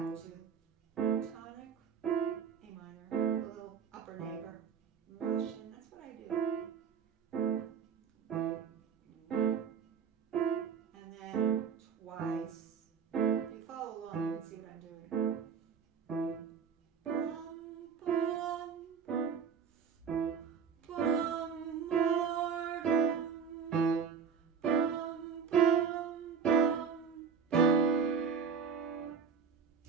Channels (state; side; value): quieter; left; 6.5 dB